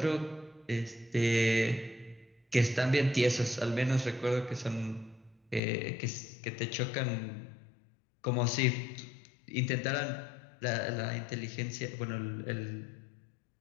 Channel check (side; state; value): right; drops out; at 5.6 s